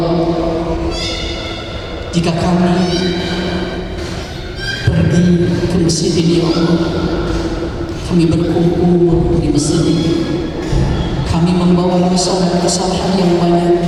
jika kami pergi ke masjid ini ya Allah, kami berkumpul di masjid ini, kami membawa dosa dan kesalahan yang banyak.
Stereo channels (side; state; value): both; identical; correlation 1.00